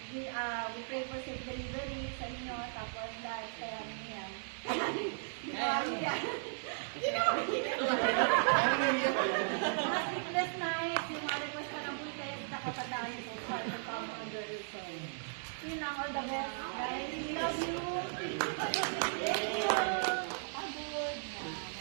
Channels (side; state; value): left; silent; digital silence